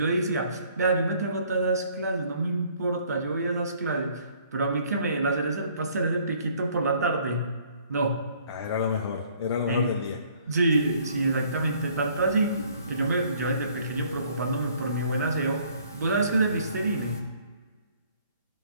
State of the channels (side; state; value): both; inverted; correlation -0.60